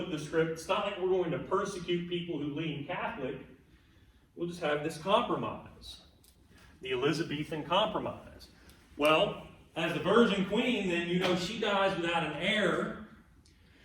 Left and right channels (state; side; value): identical; both; correlation 1.00